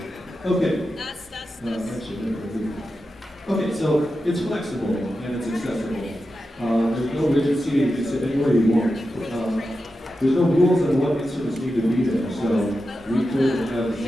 Okay. Okay, so it's flexible and it's accessible. There's no rigid seating, you can sit anywhere you want. There's no rules on what instruments need to be there, so we could have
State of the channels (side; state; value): both; normal; correlation 0.90